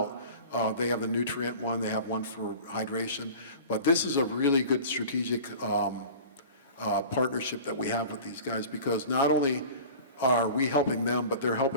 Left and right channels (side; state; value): both; inverted; correlation -0.40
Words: They have the nutrient one, they have one for hydration. But this is a really good strategic partnership that we have with these guys, because not only are we helping them, but they're